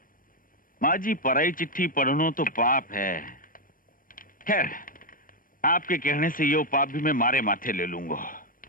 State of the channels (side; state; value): right; late; 0.40 ms